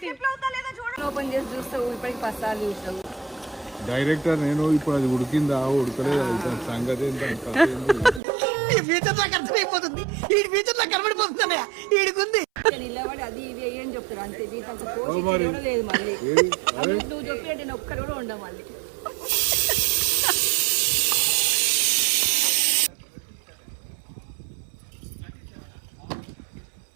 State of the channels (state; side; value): drops out; left; at 8.2 s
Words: ఓపెన్ చేసి చూస్తావు, ఇప్పటికి 10 సార్లు చూస్తావు. డైరెక్టర్ నేను ఇప్పుడు అది ఉడికిందా ఉడకలేదు సంగతి ఏంటో నిలబడి అది ఇది అని చెప్తారు అంతే. జీతంతో లేదు మళ్ళీ. నువ్వు చెప్పినట్టు నేను ఒక్కరు కూడా ఉండవు మళ్ళీ.